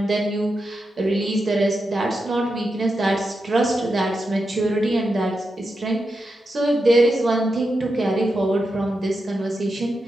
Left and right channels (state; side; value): normal; both; correlation 0.87